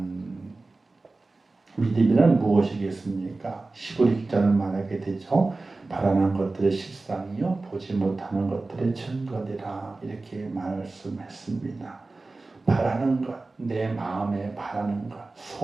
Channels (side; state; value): left; quieter; 3.4 dB